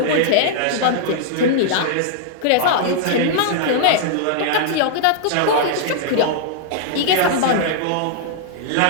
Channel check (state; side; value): different; both; correlation -0.01